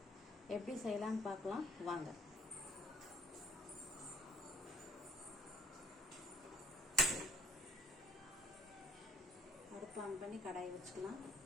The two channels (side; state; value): both; normal; correlation 0.59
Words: எப்படி செய்யலான்னு பார்க்கலாம் வாங்க. அடுப்பு ஆன் பண்ணி கடாயை வச்சுக்கலாம்.